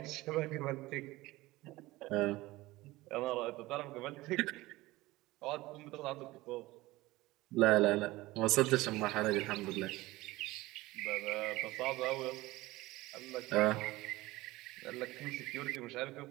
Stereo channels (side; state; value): left; quieter; 19.2 dB